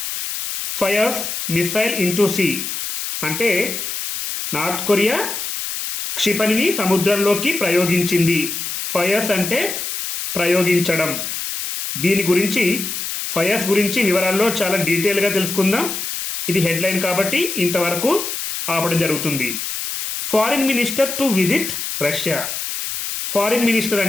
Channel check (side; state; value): left; noise; hiss, 5 dB below the sound